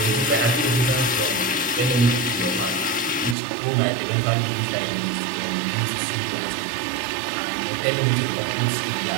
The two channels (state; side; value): drops out; left; at 3.4 s